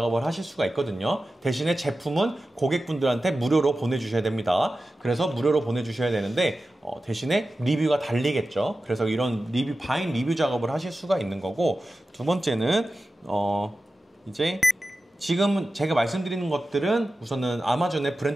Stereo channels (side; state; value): both; normal; correlation 0.94